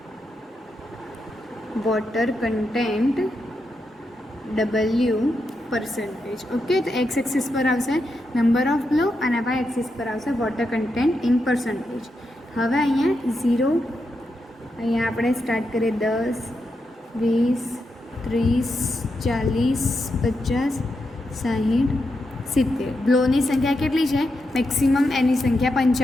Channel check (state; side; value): normal; both; correlation 0.85